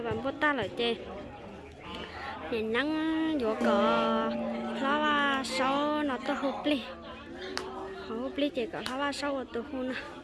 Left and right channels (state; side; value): identical; both; correlation 1.00